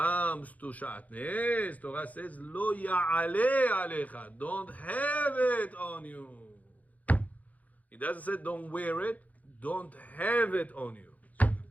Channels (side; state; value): right; late; 0.075 ms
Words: to Shatnez, Torah says lo ya'ale alecha. Don't have it on you. It doesn't say don't wear it. Don't have it on you. So